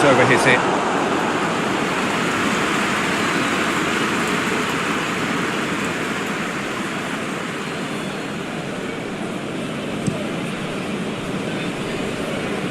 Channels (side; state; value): both; identical; correlation 1.00